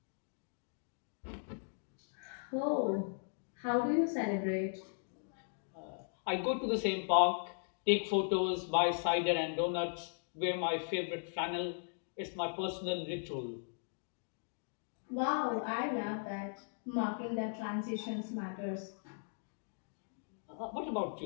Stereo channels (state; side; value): silent; right; digital silence